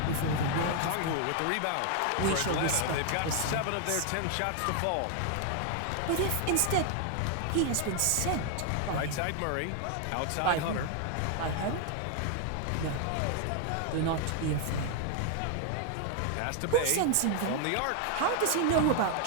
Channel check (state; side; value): different; both; correlation 0.00